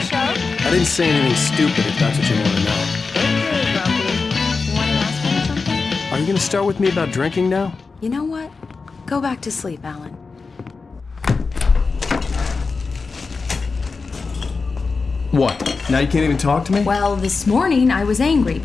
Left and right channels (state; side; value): quieter; right; 4.4 dB